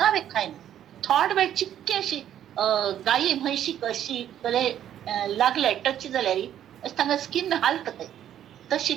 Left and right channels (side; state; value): left; quieter; 10.8 dB